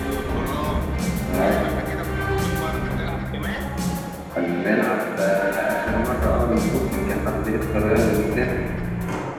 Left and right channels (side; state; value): both; identical; correlation 1.00